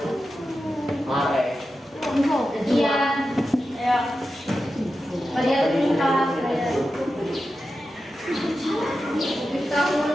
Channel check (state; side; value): normal; both; correlation 0.91